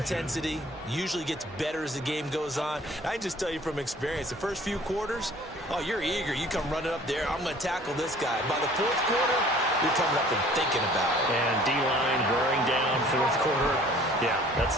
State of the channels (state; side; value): normal; both; correlation 0.52